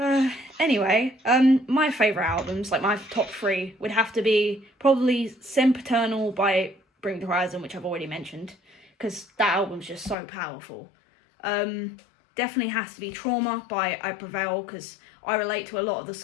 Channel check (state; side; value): drops out; right; at 10.2 s